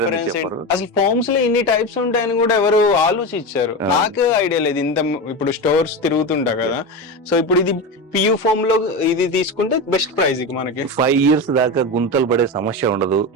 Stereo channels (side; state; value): both; normal; correlation 0.20